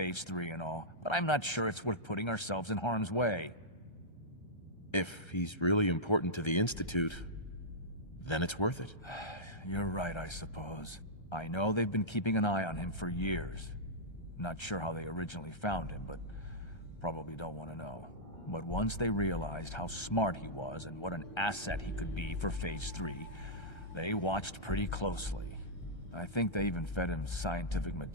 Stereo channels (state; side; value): late; right; 1.3 ms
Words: 3 and all, but I'm not sure it's worth putting ourselves in harm's way. If he's really important to the Institute, then it's worth it. You're right, I suppose. I know they've been keeping an eye on him for years. Not sure how they originally found him, but probably don't want to know. But once they realized how smart he was and what an asset he could be for Phase 3, they watched pretty closely. I think they even fed him scientific